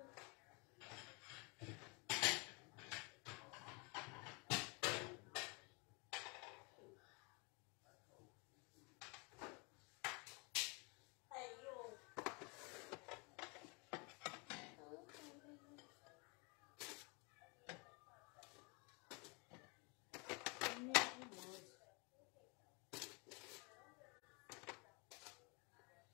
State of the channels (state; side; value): quieter; right; 31.4 dB